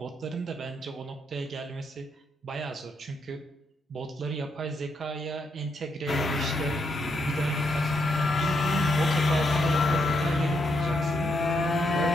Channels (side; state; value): both; normal; correlation 0.79